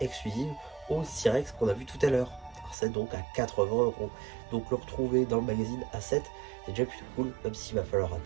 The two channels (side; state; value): left; drops out; at 2.8 s